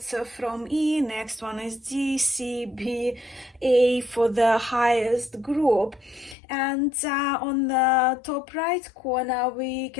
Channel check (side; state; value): right; drops out; at 6.4 s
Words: So from E, next one is D, C, B, A for the highest group. And on the top right corner, we